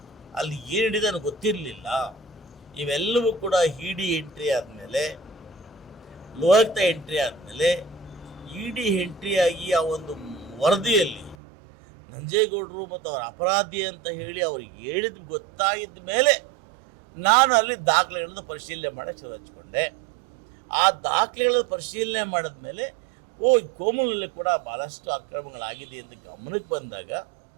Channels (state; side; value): drops out; left; at 11.4 s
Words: ಅಲ್ಲಿ ಏನು ಹಿಡಿದು ನನಗೆ ಗೊತ್ತಿರಲಿಲ್ಲ. ಇವೆಲ್ಲವೂ ಕೂಡ ಇಡಿ ಎಂಟ್ರಿ ಆದಮೇಲೆ, ಲೋಕಾಯುಕ್ತ ಎಂಟ್ರಿ ಆದಮೇಲೆ, ಇಡಿ ಎಂಟ್ರಿ ಆಗಿ ಆ ಒಂದು ವರದಿಯಲ್ಲಿ ನಂಜೇಗೌಡರು ಮತ್ತು ಅವರ ಅಪರಾಧಿ ಅಂತ ಹೇಳಿ ಅವ್ರಿಗೆ ಹೇಳಿದ ಗೊತ್ತಾಗಿದ್ದ ಮೇಲೆ ನಾನು ಅಲ್ಲಿ ದಾಖಲೆಗಳನ್ನು ಪರಿಶೀಲನೆ ಮಾಡೋಕ್ಕೆ ಶುರು ಹಚ್ಕೊಂಡೆ. ಆ ದಾಖಲೆಗಳನ್ನು ಪರಿಶೀಲನೆ ಮಾಡಿದ ಮೇಲೆ ಕೋಮುಲಲ್ಲಿ ಕೂಡ ಭಾಳಷ್ಟು ಅಕ್ರಮಗಳಾಗಿದೆ ಅಂತ ಗಮನಕ್ಕೆ ಬಂದಾಗ